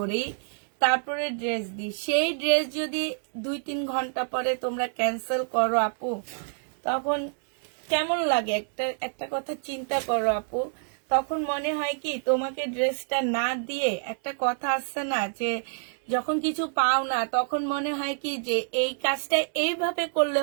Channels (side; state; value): left; silent; digital silence